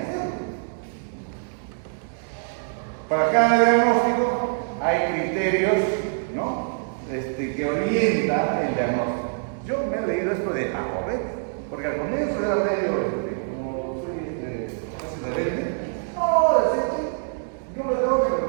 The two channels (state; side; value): silent; left; digital silence